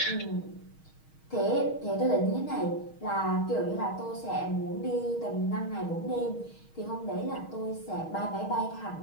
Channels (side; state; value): right; late; 6.4 ms